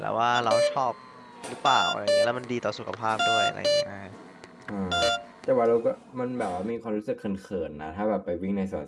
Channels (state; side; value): identical; both; correlation 1.00